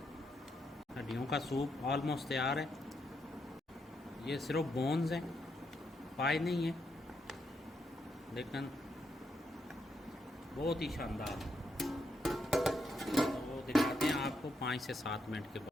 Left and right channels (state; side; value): normal; both; correlation 0.80